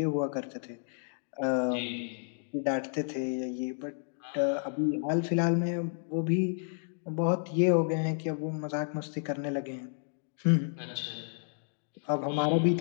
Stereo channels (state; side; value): silent; right; digital silence